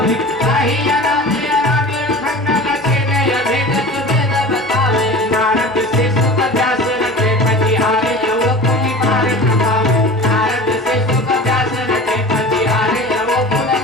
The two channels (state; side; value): normal; both; correlation 0.37